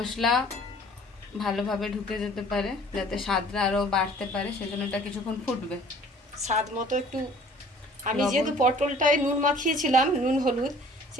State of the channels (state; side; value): normal; both; correlation 0.52